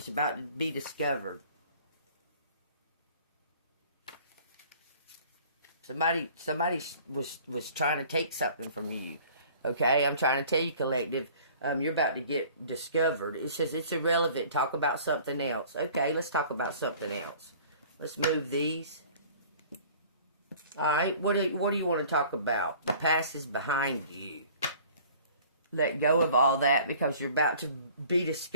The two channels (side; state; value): both; inverted; correlation -0.49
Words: about to be discovered. Somebody was trying to take something from you. Okay, I'm trying to tell you, collective, you're about to get discovered. It says it's irrelevant. Talk about something else. Okay, let's talk about something else. Let's move these. All right, what do you want to talk about? The past is behind you. Let go of all that because you're about to be